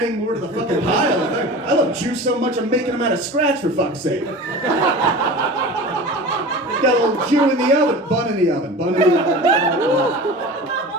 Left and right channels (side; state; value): both; normal; correlation 0.35